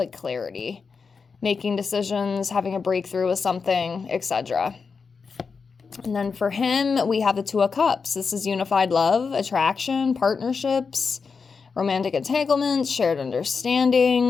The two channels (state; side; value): quieter; right; 5.2 dB